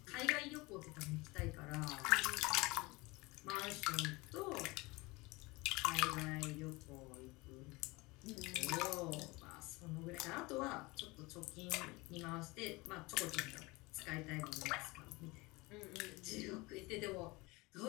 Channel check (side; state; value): right; quieter; 23.5 dB